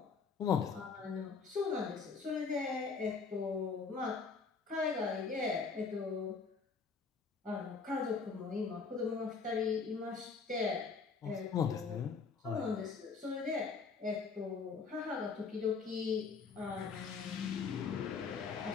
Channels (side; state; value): right; quieter; 5.1 dB